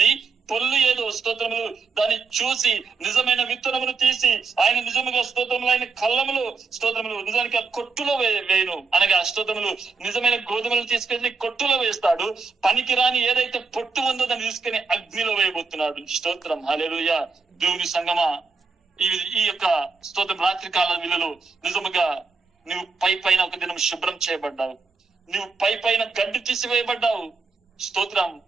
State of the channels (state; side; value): quieter; left; 4.5 dB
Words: పొల్లు ఏదో స్తోత్రములు దాన్ని చూసి నిజమైన విత్తనమును తీసి ఆయన నిజముగా స్తోత్రములు ఆయన కళ్ళములు స్తోత్రములు నిజానికి ఆ కొట్టులో వేయను. అనగా స్తోత్రములు నిజమైన గోధుమలు తీసుకెళ్లి కొట్టులో వేస్తాడు. పనికిరాని ఏదైతే పొట్టు ఉందో దాన్ని తీసుకుని అగ్నిలో వేయబోతున్నాడు. స్తోత్రం, హల్లెలూయా. దేవుని సంగమా, ఈ యొక్క స్తోత్రం రాత్రి కాల విలువలో నిజముగా నువ్వు పైన ఒక దినం శుభ్రం చేయబడ్డావు, నువ్వు పైన గడ్డి తీసివేయబడ్డావు. స్తోత్రం.